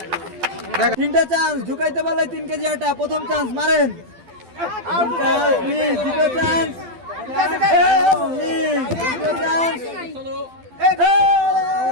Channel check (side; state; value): left; late; 12 ms